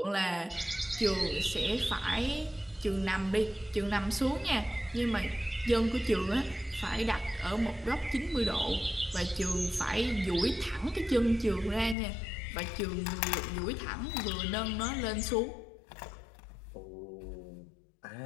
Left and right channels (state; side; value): drops out; right; at 12.0 s